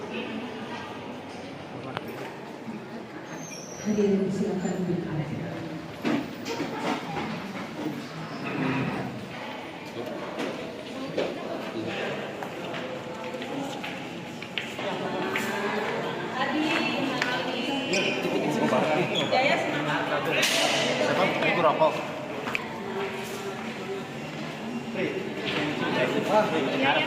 Hadirin silakan duduk. Jaya semangat. Siapa? Ibu rokok.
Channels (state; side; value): identical; both; correlation 1.00